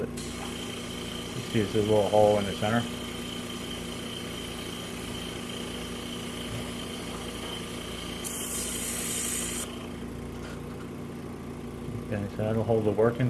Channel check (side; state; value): both; identical; correlation 1.00